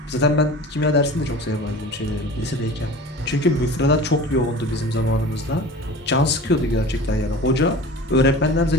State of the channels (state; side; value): normal; both; correlation 0.38